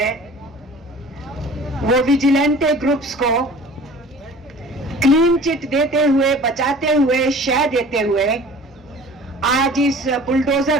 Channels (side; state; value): both; normal; correlation 0.45